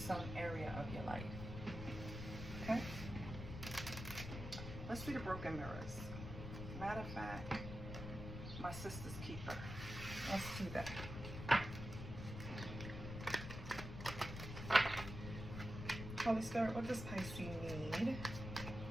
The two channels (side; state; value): left; noise; rumble, 7 dB below the sound